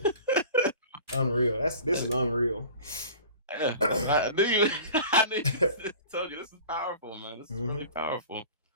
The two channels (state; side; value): inverted; both; correlation -0.41